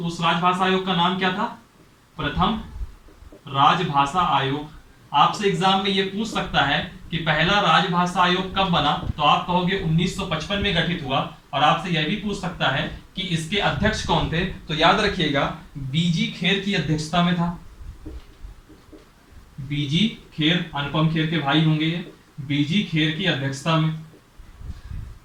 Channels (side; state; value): both; identical; correlation 1.00